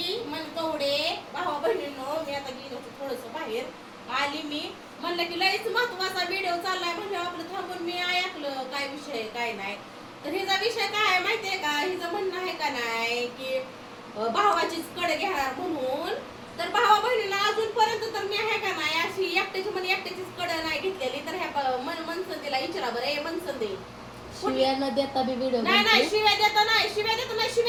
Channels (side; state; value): both; identical; correlation 1.00